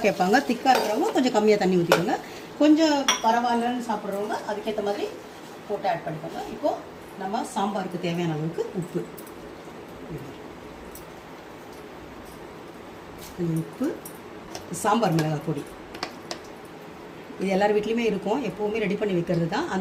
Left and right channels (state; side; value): identical; both; correlation 1.00